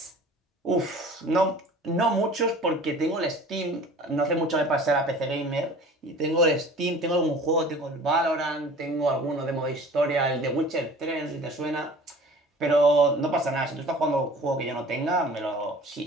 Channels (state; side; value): normal; both; correlation 0.45